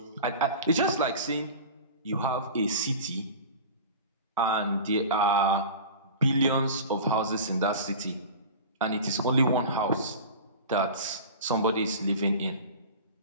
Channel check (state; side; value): inverted; both; correlation -0.35